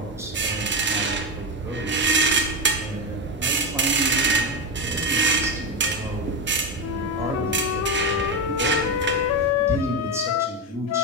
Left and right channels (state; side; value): normal; both; correlation 0.13